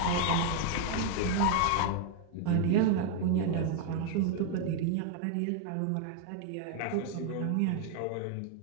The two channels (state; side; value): different; both; correlation 0.01